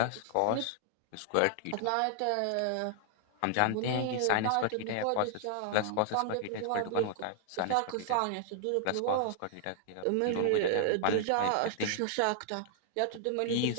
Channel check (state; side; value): different; both; correlation -0.01